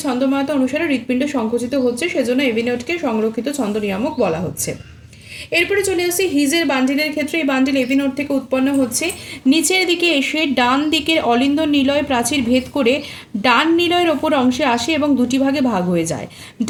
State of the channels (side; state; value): both; identical; correlation 1.00